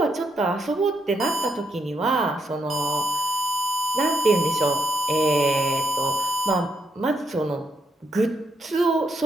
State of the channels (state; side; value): normal; both; correlation 0.79